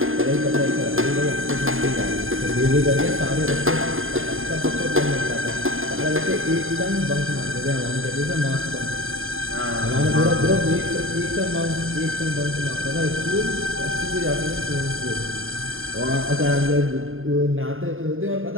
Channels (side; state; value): left; late; 0.60 ms